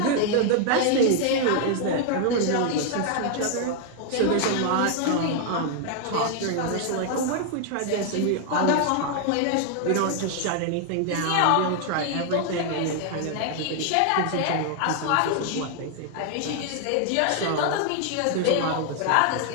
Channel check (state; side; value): different; both; correlation 0.00